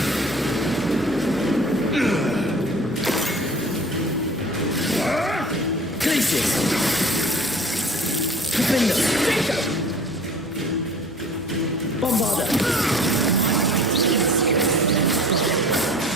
Glacius. Defender. Bombarder.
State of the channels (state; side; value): normal; both; correlation 0.45